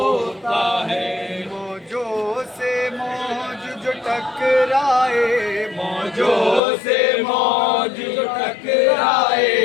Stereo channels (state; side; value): drops out; right; at 6.6 s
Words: ہے، موجوں سے موج جو ٹکرائے، موجوں سے موج جو ٹکرائے،